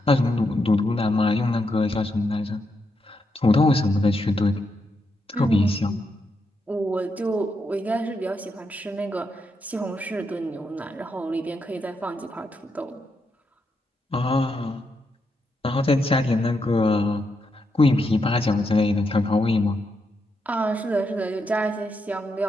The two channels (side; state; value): both; normal; correlation 0.82